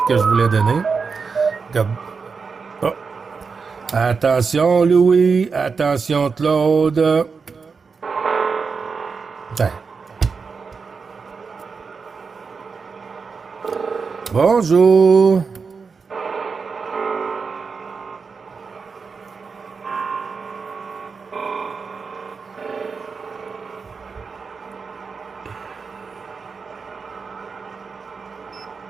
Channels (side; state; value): left; quieter; 5.1 dB